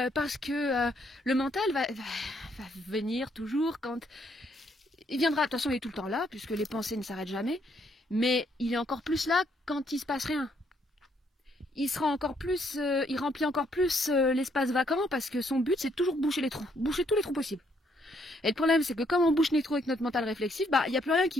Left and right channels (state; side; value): normal; both; correlation 0.71